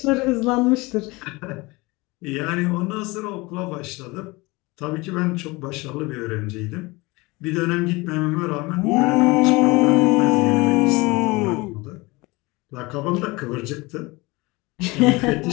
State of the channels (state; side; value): quieter; right; 23.6 dB